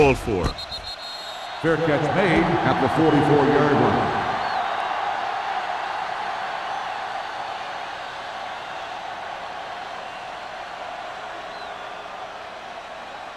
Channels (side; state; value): both; identical; correlation 1.00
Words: for. Fair catch made at the 44-yard line.